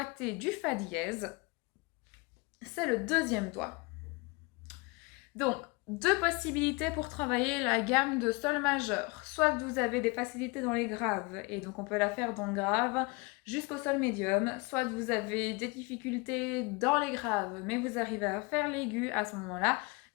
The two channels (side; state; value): right; quieter; 27.5 dB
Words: du fa dièse, c'est le deuxième doigt. Donc, deux possibilités pour travailler la gamme de sol majeur. Soit que vous avez des facilités dans les graves, et donc on peut la faire dans le grave jusqu'au sol médium, soit que vous avez des difficultés dans les graves, mais vous arrivez à faire l'aigu à ce moment-là,